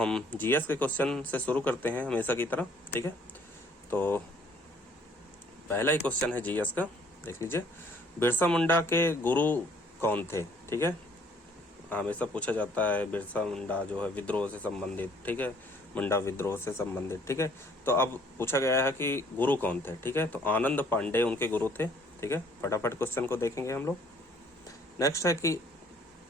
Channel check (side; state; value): both; normal; correlation 0.60